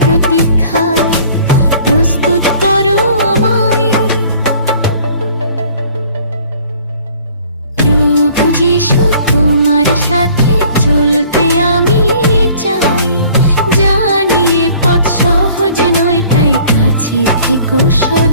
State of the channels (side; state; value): both; inverted; correlation -0.53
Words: প্রতীক্ষায় প্রস্তুত করো আমায়। প্রভু যিশু তোমার সাথে চলতে আমি চাই। জানি এ পথ সহজ নয়, তাই কাছে থেকো